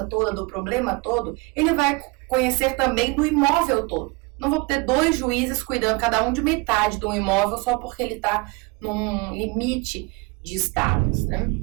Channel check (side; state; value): left; quieter; 26.1 dB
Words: toda, do problema todo, ele vai conhecer também do imóvel todo. Não vou ter 2 juízes cuidando cada um de metade de um imóvel só porque ele está num limite de estados, né?